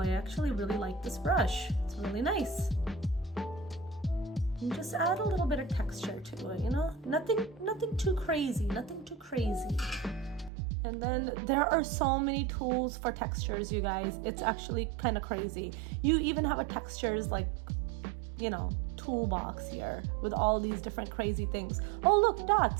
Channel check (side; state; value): left; drops out; at 10.5 s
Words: actually really like this brush. It's really nice. And just add a little bit of texture to it, you know? Nothing too crazy, nothing too crazy. And then there are so many tools for textures, you guys. It's actually kind of crazy. You even have a textures like, you know, toolbox here with all these different crazy things. Oh look,